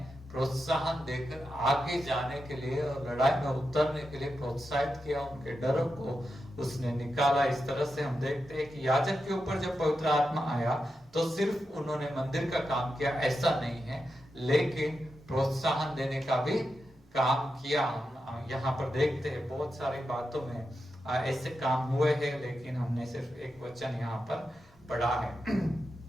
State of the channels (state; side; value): normal; both; correlation 0.88